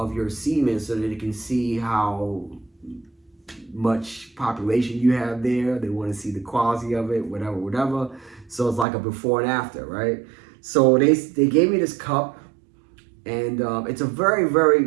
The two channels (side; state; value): left; drops out; at 8.8 s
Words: your semen so that they can see how much population you have there. They want to see the quality of it, whatever. So it's like a before and after, right? So they gave me this cup, and it's a very,